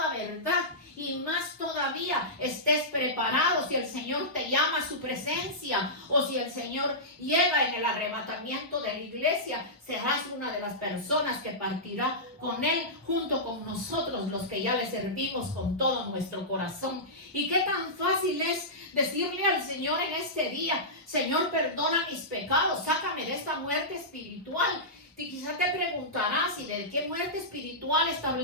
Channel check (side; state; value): both; normal; correlation -0.15